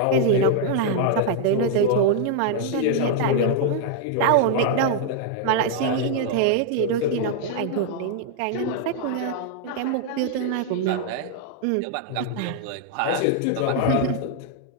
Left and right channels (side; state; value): both; different; correlation 0.00